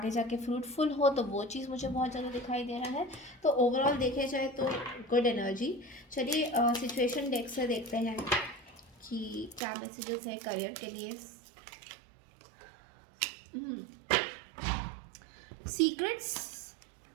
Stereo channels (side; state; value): left; drops out; at 9.6 s